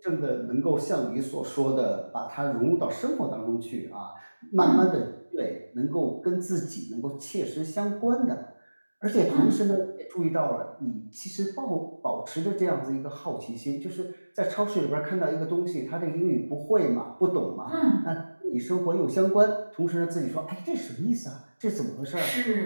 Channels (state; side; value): inverted; both; correlation -1.00